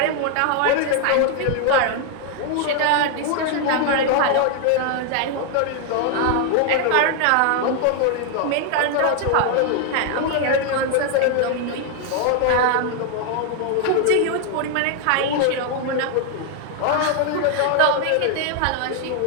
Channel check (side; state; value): both; different; correlation 0.00